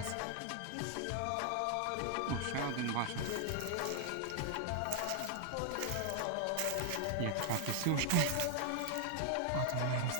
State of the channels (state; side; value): different; both; correlation 0.00